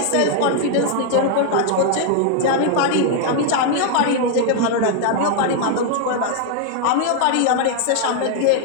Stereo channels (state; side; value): different; both; correlation 0.00